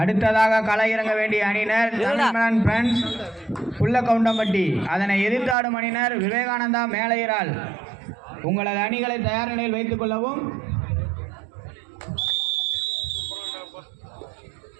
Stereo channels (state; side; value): drops out; left; at 5.6 s